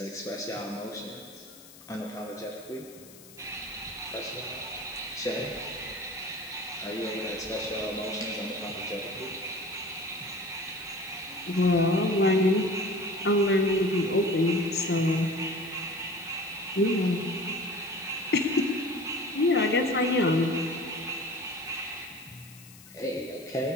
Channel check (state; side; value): noise; left; hiss, 21 dB below the sound